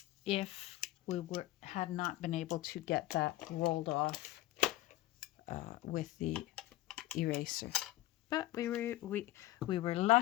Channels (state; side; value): quieter; right; 16.0 dB